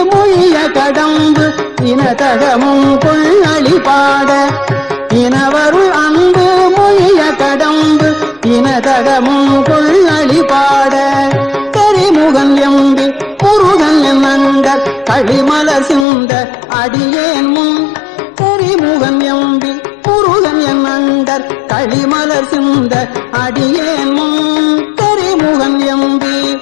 மொழிய கடம்பு இனதகமும் கொள்ளளி பாட இனவருள் அன்பு மொழிய கடம்பு இனதகமும் கொள்ளளி பாட கரிமுகன் எம்பி முருகன் நண்ட களிமல சிந்த அடியேன் முன் கரிமுகன் எம்பி முருகன் நண்டர் களிமலர் சிந்த அடியேன் முன் கரிமுகன் எம்பி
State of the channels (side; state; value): right; drops out; at 16.1 s